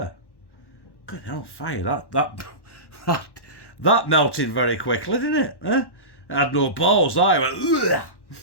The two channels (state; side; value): late; right; 1.1 ms